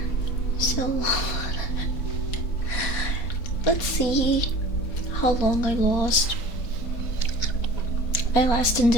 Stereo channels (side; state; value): right; late; 4.2 ms